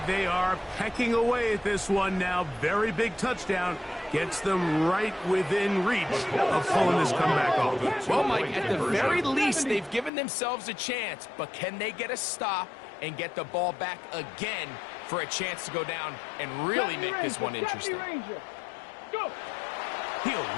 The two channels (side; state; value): right; drops out; at 10.1 s